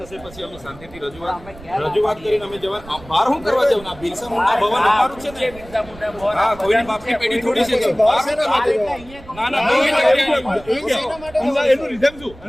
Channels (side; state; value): right; noise; rumble, 19 dB below the sound